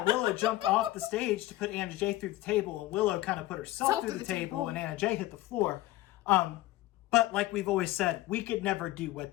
Willow jumped off the stage to put Anna Jay through the table, and Willow kind of put herself through the table, and Anna Jay hit the floor. But like we've always said, we could never do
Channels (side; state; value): right; quieter; 16.8 dB